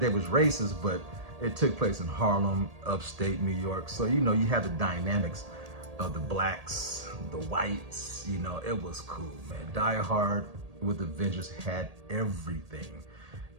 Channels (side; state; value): left; late; 1.8 ms